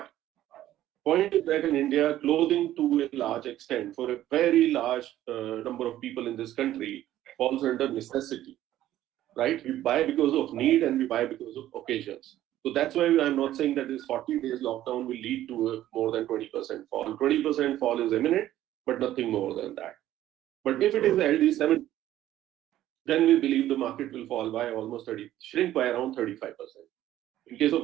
point is that in India, clothing to a large extent for a very large number of people in this country falls under necessity, right? We buy because of need and we buy because of occasions. So that's why I'm not saying that this 40 days lockdown will lead to a more than 20% fall. 20% fall is imminent, but nothing more than that. But if it is LD 7, then we believe the market will fall by almost 30, shrink by around 35%. In case of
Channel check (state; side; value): quieter; left; 13.4 dB